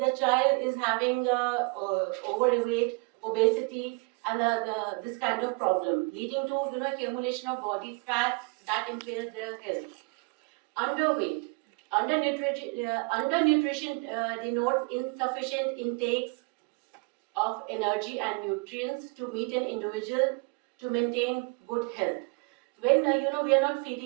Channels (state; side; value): quieter; left; 31.0 dB